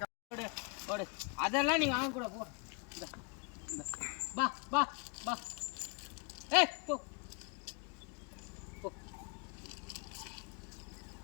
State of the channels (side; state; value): right; quieter; 32.4 dB